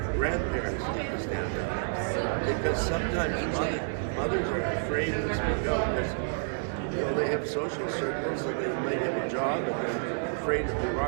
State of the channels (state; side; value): silent; left; 58 dB below the other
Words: grandparents need to stand up. Because sometimes mothers are afraid to speak out because they have social circles and they might have a job and they're afraid if they